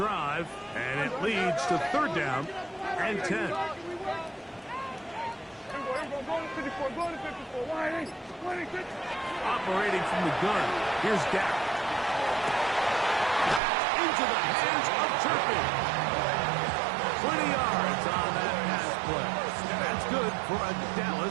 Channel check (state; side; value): drops out; left; at 13.6 s